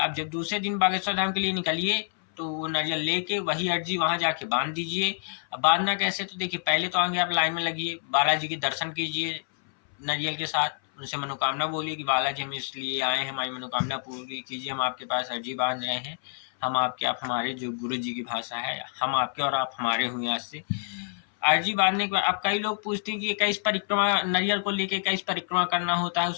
जब दूसरे दिन बागेश्वर धाम के लिए निकलिए तो वो नारियल लेके वही अर्जी वहां जाके बांध दीजिए। अब बांधना कैसे, तो देखिए, पहले तो आगे आप लाइन में लगिए, बालाजी के दर्शन कीजिए नारियल के साथ, उनसे मनोकामना बोलिए कि बालाजी हम इसलिए आए हैं, हमारी मनोकामना पूरी कीजिए, हम आपके पास अर्जी बांध रहे हैं। हम आपके, आप हमारे, जो गुरु जी की भाषा है, हम आपके और आप हमारे हुए। आज से अर्जी बांधने के बाद अब कई लोग पूछते हैं कि 21 परिक्रमा, नारियल को लेके 21 परिक्रमा करना होता है,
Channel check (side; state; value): right; silent; 60 dB below the other